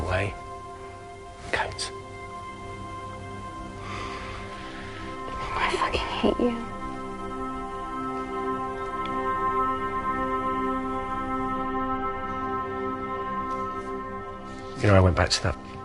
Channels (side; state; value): both; identical; correlation 1.00